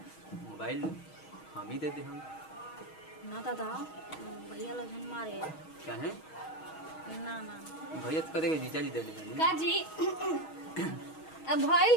मोबाइल हम ही दे दे हम ना दादा, भैया लगन मारे चाहे ना ना भैया तो करेगा जीजा जी दे देंगे का जी अब भइल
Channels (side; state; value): right; late; 6.3 ms